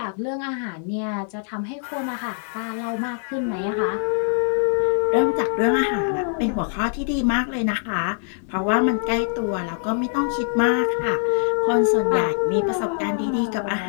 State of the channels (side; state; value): right; silent; 63 dB below the other